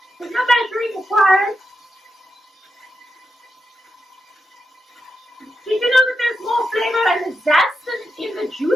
There's no measuring required. Did you know that there's more flavor and the zest than in the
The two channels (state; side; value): normal; both; correlation 0.88